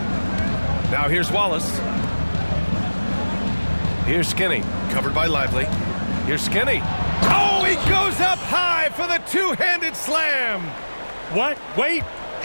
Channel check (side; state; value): both; inverted; correlation -1.00